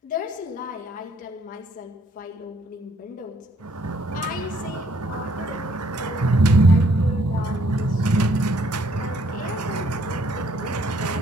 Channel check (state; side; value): normal; both; correlation 0.65